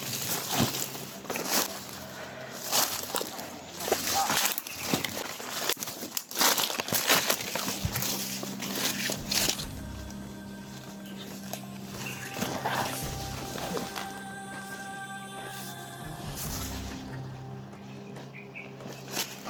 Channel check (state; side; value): identical; both; correlation 1.00